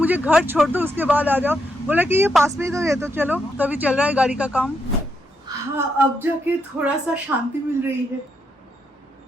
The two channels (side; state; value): both; normal; correlation 0.80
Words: घर छोड़ दो, उसके बाद आ जाओ। बोला कि ये पास में ही तो है, तो चलो। तो अभी चल रहा है गाड़ी का काम। हाँ, अब जाके थोड़ा सा शांति मिल रही है।